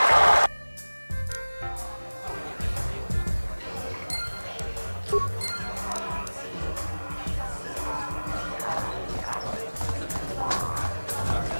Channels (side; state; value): both; inverted; correlation -1.00